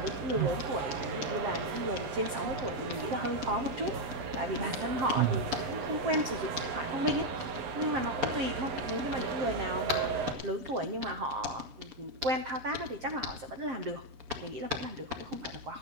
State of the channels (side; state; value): left; late; 6.9 ms